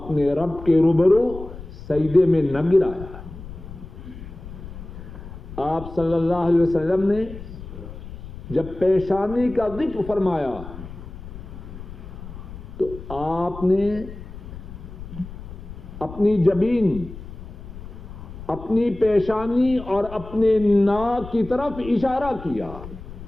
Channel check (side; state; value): left; noise; rumble, 13 dB below the sound